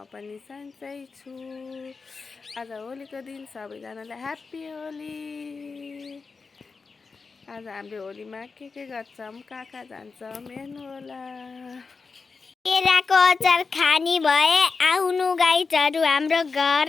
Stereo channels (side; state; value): right; quieter; 4.6 dB